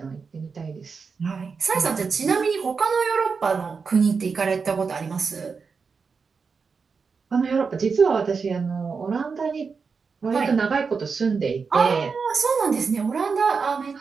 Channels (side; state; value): left; quieter; 5.2 dB